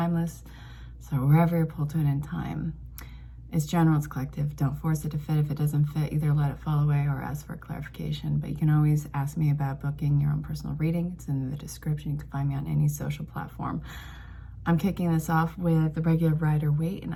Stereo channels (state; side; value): identical; both; correlation 1.00